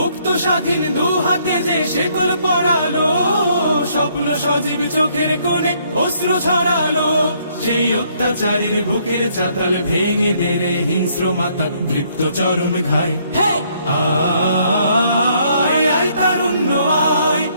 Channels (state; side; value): inverted; both; correlation -0.68